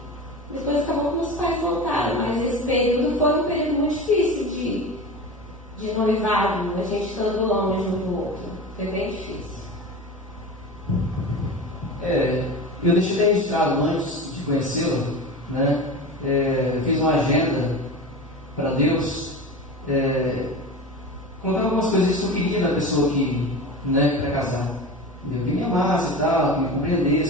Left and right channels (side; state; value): both; normal; correlation 0.30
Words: Depois acabou que os pais voltaram, mas esse período foi um período muito difícil de noivado, a gente estando longe um do outro. Foi bem difícil. Eu deixei registrado antes de conhecê-lo, né? Fiz uma agenda para Deus, colocar algumas coisas que eu queria da pessoa que, né, para casar. Que me amasse e tal, que me